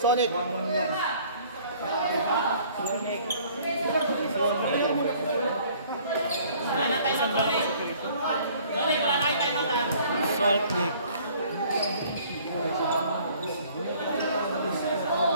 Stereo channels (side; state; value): both; inverted; correlation -0.55